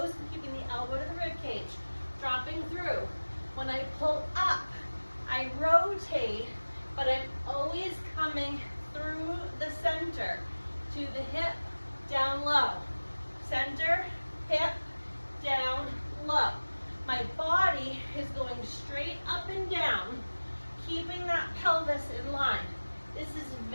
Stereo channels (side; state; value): both; inverted; correlation -1.00